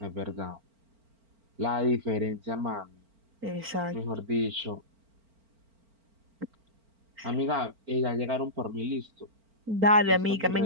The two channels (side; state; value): left; late; 4.4 ms